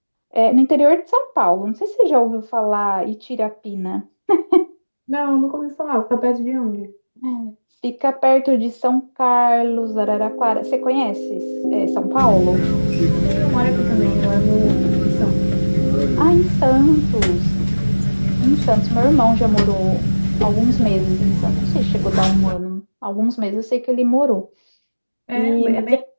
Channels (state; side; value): inverted; both; correlation -1.00